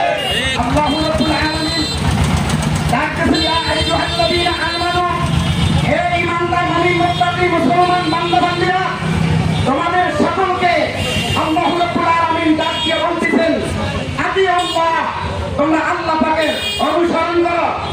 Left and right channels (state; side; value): identical; both; correlation 1.00